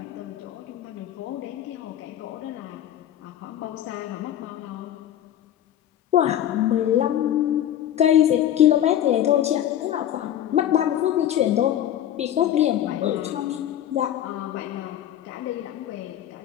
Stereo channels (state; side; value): quieter; right; 11.2 dB